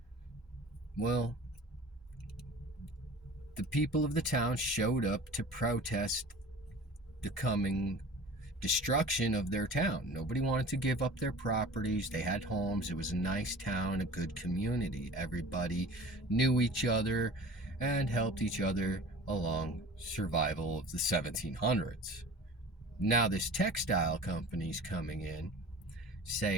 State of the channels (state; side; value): normal; both; correlation 0.40